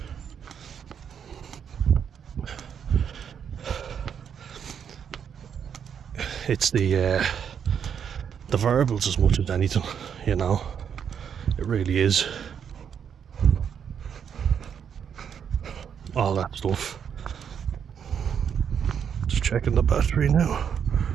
It's the verbals as much as anything, you know. It really is. All that stuff. Just checking the battery now.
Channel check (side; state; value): left; quieter; 7.8 dB